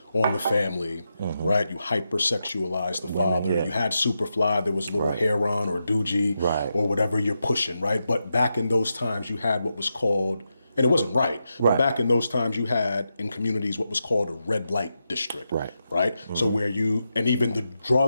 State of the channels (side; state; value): both; inverted; correlation -0.87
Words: on the family, right? You hypersexualize the father. Yeah. You had Superfly, there was Little Heron or Doogie or whatever you're pushing, right? But back in those times, you had what was called, and it wasn't right, but back in those times, you had in communities what was called a red light district, right? So where and even the